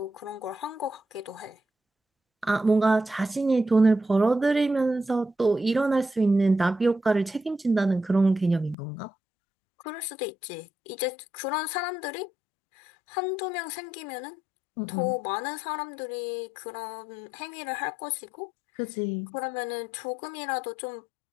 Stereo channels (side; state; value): right; drops out; at 8.8 s